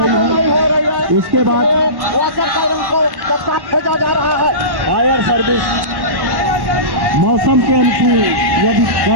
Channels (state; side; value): late; left; 1.1 ms